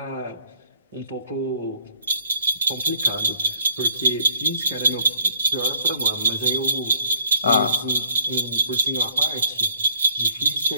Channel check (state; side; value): inverted; both; correlation -0.59